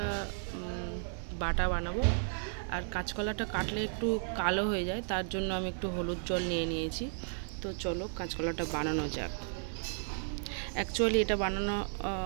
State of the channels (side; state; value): left; silent; digital silence